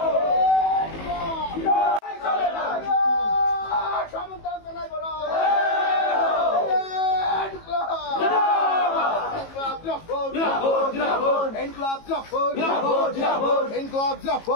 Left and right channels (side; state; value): right; late; 18 ms